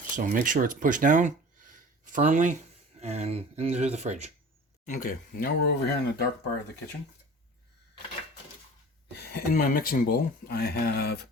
so make sure it's pushed down firmly and into the fridge. Okay, now we're over here in the dark part of the kitchen. In my mixing bowl, I have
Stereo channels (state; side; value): normal; both; correlation 0.41